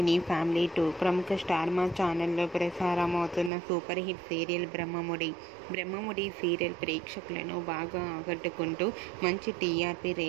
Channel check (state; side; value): drops out; left; at 3.5 s